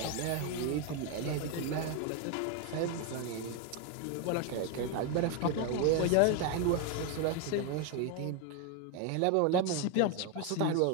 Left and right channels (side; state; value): both; different; correlation 0.01